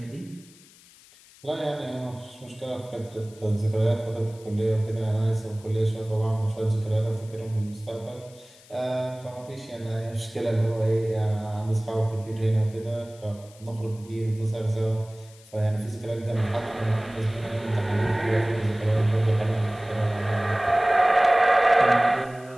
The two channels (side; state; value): left; noise; hiss, 25 dB below the sound